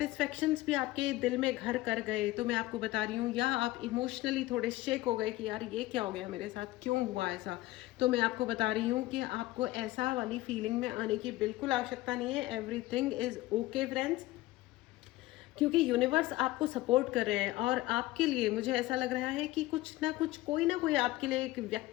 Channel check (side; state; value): right; quieter; 18.0 dB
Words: भी आपके दिल में घर कर गए तो मैं आपको बता रही हूँ, या आप इमोशनली थोड़े शेक हो गए कि यार ये क्या हो गया मेरे साथ, क्यों हुआ ऐसा, तो मैं आपको बता रही हूँ कि आपको ऐसा वाली फीलिंग में आने की बिल्कुल आवश्यकता नहीं है। एवरीथिंग इज ओके फ्रेंड्स, क्योंकि यूनिवर्स आपको सपोर्ट कर रहे हैं। और आपके लिए मुझे ऐसा लग रहा है कि कुछ ना कुछ, कोई ना कोई आपके लिए एक